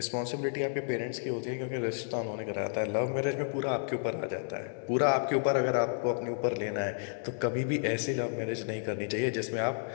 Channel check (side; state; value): right; silent; digital silence